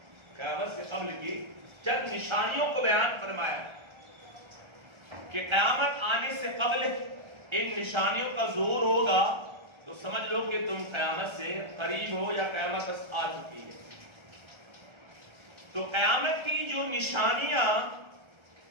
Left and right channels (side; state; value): left; late; 1.3 ms